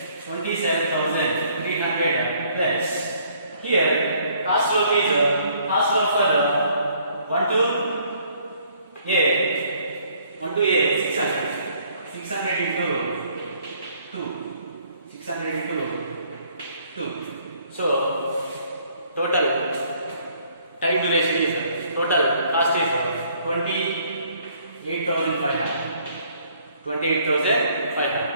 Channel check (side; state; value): both; inverted; correlation -0.63